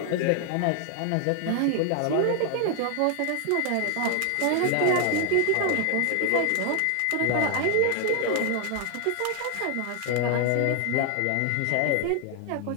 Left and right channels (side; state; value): both; different; correlation 0.00